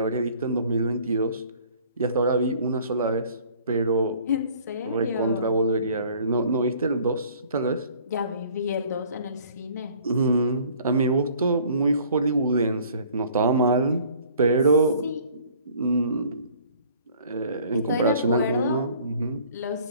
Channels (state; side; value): inverted; both; correlation -0.54